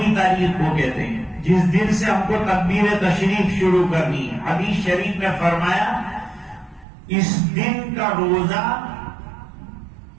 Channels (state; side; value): drops out; left; at 6.9 s